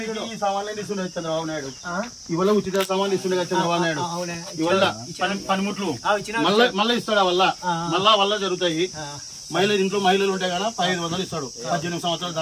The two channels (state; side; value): identical; both; correlation 1.00